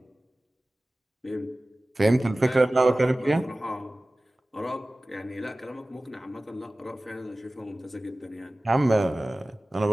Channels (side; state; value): both; normal; correlation 0.97